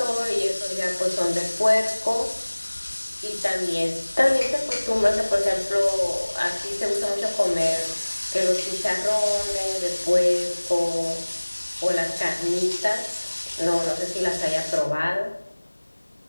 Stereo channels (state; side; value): inverted; both; correlation -1.00